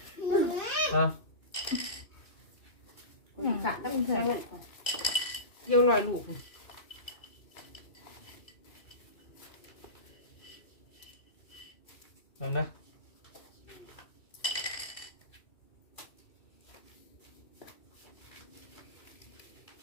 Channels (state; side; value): late; right; 2.6 ms